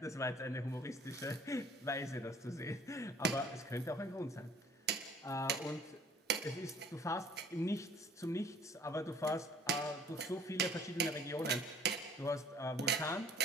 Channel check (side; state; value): both; normal; correlation 0.53